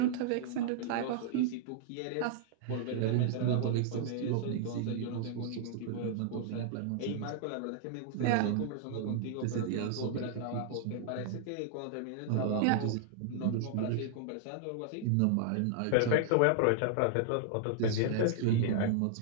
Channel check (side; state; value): both; different; correlation -0.01